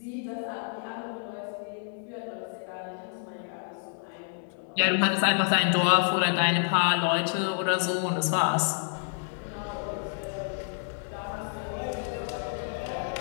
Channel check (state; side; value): silent; right; 59 dB below the other